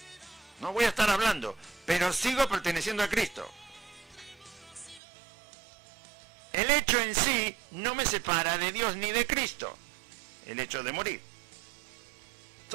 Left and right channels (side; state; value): left; drops out; at 5.0 s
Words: No voy a estar hablando, pero sigo perteneciendo a Cristo. El hecho en sí no me separa de Dios ni de Cristo. El hecho de morir.